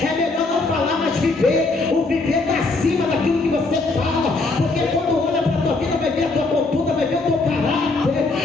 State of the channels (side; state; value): right; quieter; 3.5 dB